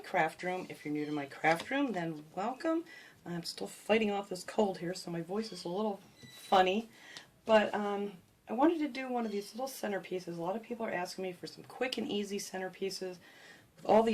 room. If you're new to my craft room, then welcome. I'm still fighting off this cold here, so my voice is a little funny. But I wanted to do one of these little centerpieces. A lot of people are asking me for some quick and easy centerpieces with all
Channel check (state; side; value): identical; both; correlation 1.00